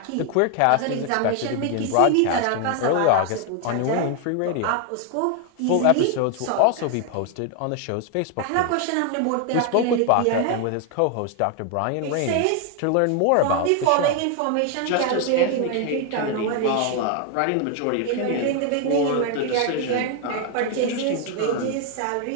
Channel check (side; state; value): both; different; correlation 0.01